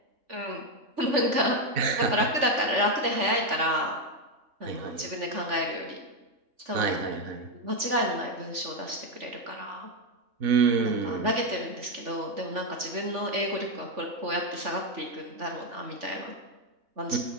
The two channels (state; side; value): late; left; 3.5 ms